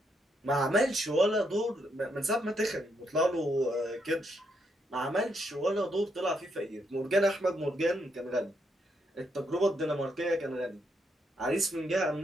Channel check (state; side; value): normal; both; correlation 0.77